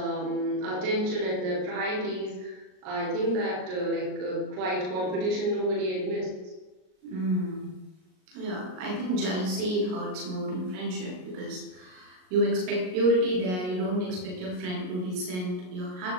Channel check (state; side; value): late; left; 38 ms